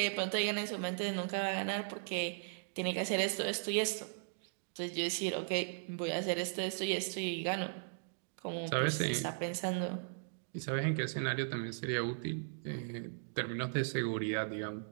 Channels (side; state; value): left; silent; digital silence